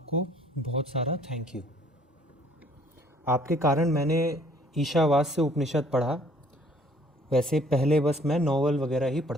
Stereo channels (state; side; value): normal; both; correlation 0.59